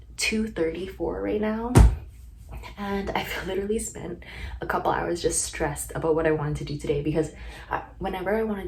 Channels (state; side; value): identical; both; correlation 1.00